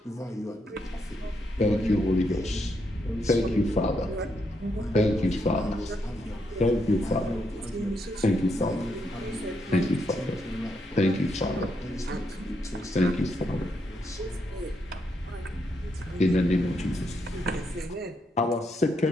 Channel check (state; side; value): normal; both; correlation 0.79